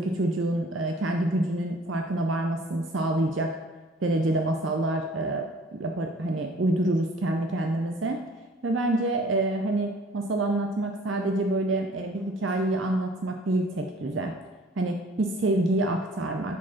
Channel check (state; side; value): normal; both; correlation 0.53